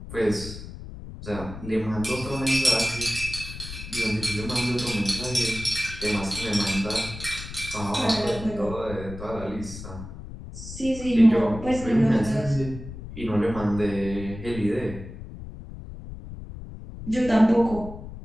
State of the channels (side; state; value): left; noise; rumble, 11 dB below the sound